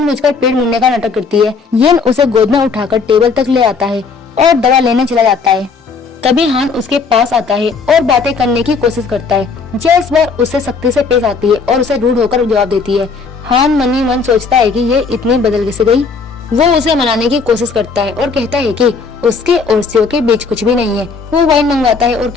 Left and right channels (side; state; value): right; quieter; 4.9 dB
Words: पेड़ मुड़ने का नाटक करती है। येन उसे गोद में उठाकर टेबल तक ले आता है और दवा लेने चला जाता है। तभी हान उसके पास आता है और बातें करने की कोशिश करता है। जिया इस बार उससे सख्ती से पेश आती है और उसे रूड होकर जवाब देती है। हान मन ही मन सोचता है कि ये इतनी बदल कैसे गई। वो उसे मनाने की कोशिश करता है और कहता है कि उसके और सीओ के बीच कुछ भी नहीं है। वो वाइन मंगवाता है और